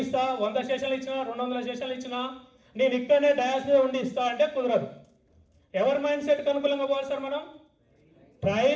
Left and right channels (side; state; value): both; identical; correlation 1.00